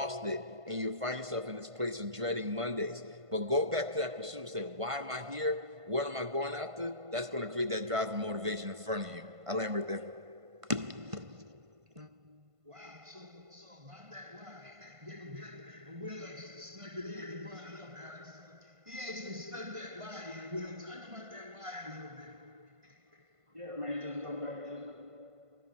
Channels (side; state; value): left; late; 1.5 ms